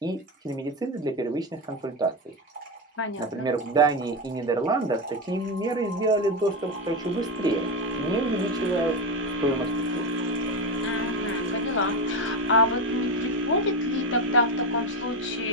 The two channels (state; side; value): normal; both; correlation 0.14